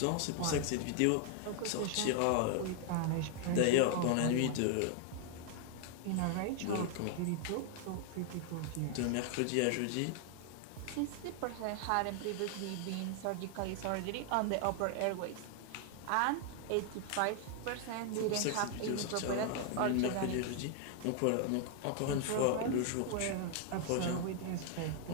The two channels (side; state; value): both; different; correlation 0.00